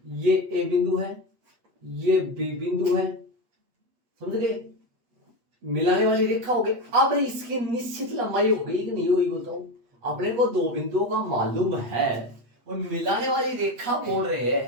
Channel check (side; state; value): left; late; 8.2 ms